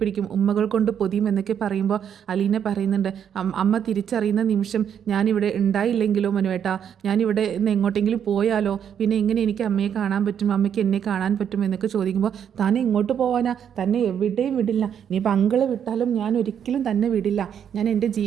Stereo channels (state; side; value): quieter; left; 8.6 dB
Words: ഉമ്മകൾ കൊണ്ട് പൊതിയും എന്നൊക്കെ പറയുമ്പോൾ അലീന പറയുന്നുണ്ട്, അമ്മ തിരിച്ചറിയുന്ന നിമിഷം ഞാനിവിടെ ഉണ്ടായില്ലെങ്കിലോ മനുവേട്ടാ, ഞാനിവിടെ നിന്ന് എങ്ങോട്ടെങ്കിലും പോയാലോ, പിന്നെ എങ്ങനെ എനിക്ക് അമ്മയെ കാണാൻ പറ്റും, അമ്മയ്ക്ക് എന്നെ കാണാൻ പറ്റും എന്നൊക്കെ ചോദിക്കുമ്പോൾ താൻ എങ്ങോട്ട് പോകാനാ, തന്നെ എവിടെയും വിടില്ല, ഇനിയിപ്പോൾ അങ്കിള് വിട്ടാലും ഞാൻ ഒരിക്കലും തന്നെ വിടില്ല, ഞാൻ എൻ്റെ